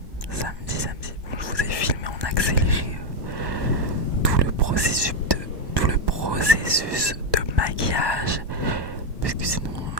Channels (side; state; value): left; late; 1.2 ms